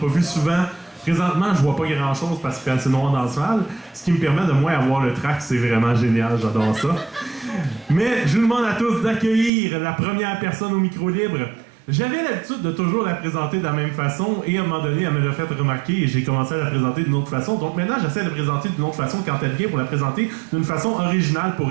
vus souvent. Présentement, je vois pas grand-chose parce qu'il fait assez noir dans la salle, ce qui me permet de moins avoir le track. C'est vraiment génial, j'adore ça. Mais je vous demande à tous d'accueillir la première personne au micro libre. J'avais l'habitude de toujours la présenter de la même façon et à un moment donné, elle me l'a fait remarquer et j'ai commencé à la présenter d'une autre façon. Donc maintenant, j'essaie de la présenter d'une autre façon quand elle vient pour la présenter d'une façon originale pour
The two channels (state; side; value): drops out; left; at 9.5 s